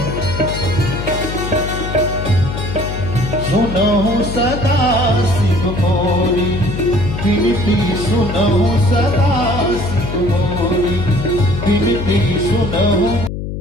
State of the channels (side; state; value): left; noise; hum, 6 dB below the sound